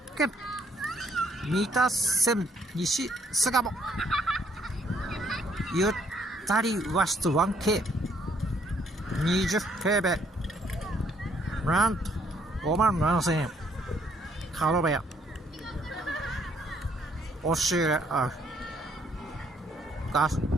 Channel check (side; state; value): both; normal; correlation 0.67